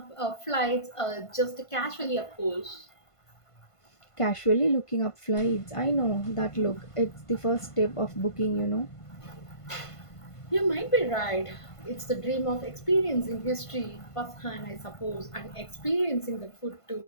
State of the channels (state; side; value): late; right; 1.5 ms